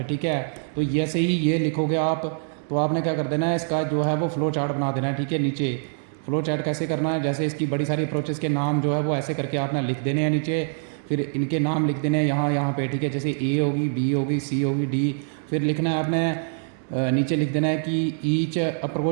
ठीक है। तो जैसे ही ये लिखोगे आप तो आपने क्या कर देना है, इसका जो है वो फ्लो चार्ट बना देना है, ठीक है। नीचे फ्लो चार्ट कैसे करना है, जैसे इसकी बड़ी सारी अप्रोचेस के नाम जो है वो ऐसे करके आपने लिख देने हैं नीचे, फिर इनके नाम लिख देने हैं यहाँ पे, ठीक है। जैसे A होगी, B होगी, C होगी, D, फिर लिखना है आपने नीचे लिख देना है कि ईच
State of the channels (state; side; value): silent; left; 62 dB below the other